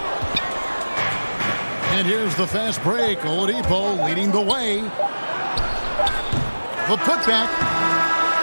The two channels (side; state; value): both; inverted; correlation -1.00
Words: And here's the fast break. Oladipo leading the way. a putback.